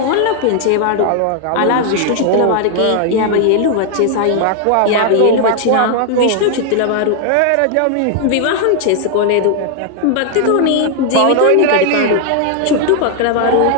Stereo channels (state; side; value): different; both; correlation 0.00